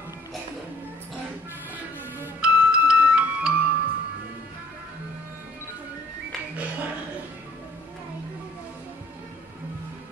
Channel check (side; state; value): both; normal; correlation 0.59